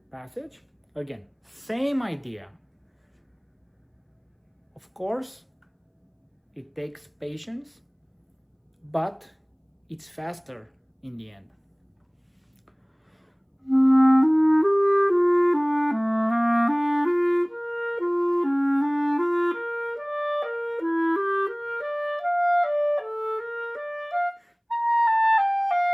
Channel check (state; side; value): identical; both; correlation 1.00